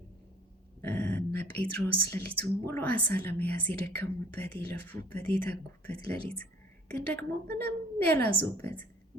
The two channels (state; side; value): normal; both; correlation 0.52